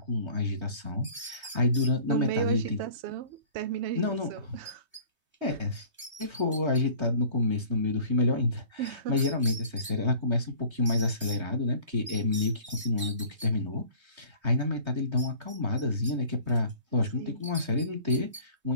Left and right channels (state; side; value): late; left; 3.2 ms